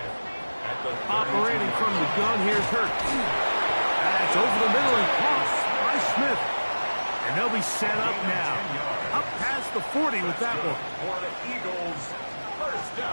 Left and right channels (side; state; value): both; inverted; correlation -1.00